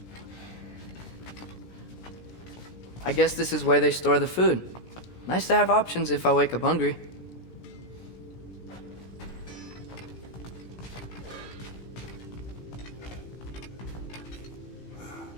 I guess this is where they store the food. Nice to have options if I wake up hungry.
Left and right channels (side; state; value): right; late; 17 ms